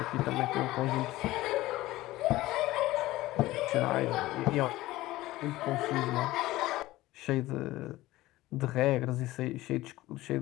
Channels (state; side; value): quieter; right; 17.4 dB